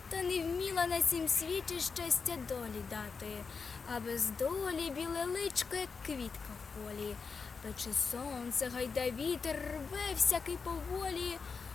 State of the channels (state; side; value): quieter; right; 5.2 dB